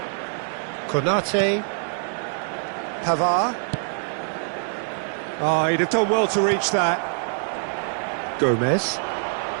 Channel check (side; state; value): left; silent; 60 dB below the other